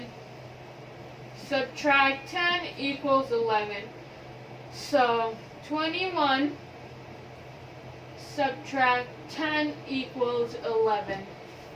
subtract 10 equals 11. So 21 subtract 10 equals 11.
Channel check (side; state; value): both; identical; correlation 1.00